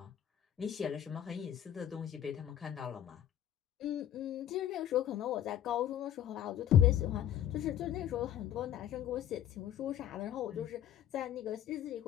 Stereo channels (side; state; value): right; quieter; 10.8 dB